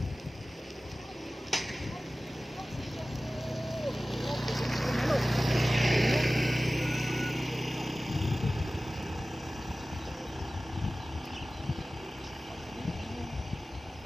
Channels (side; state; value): both; normal; correlation 0.96